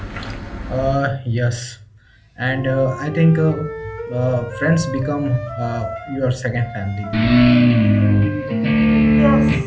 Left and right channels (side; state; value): both; identical; correlation 1.00